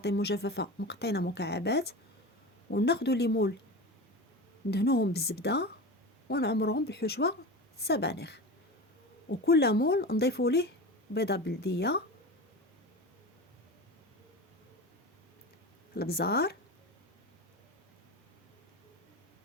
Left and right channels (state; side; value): normal; both; correlation 0.28